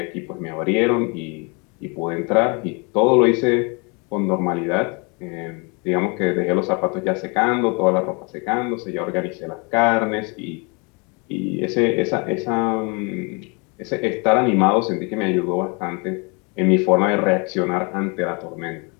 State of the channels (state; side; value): quieter; right; 31.9 dB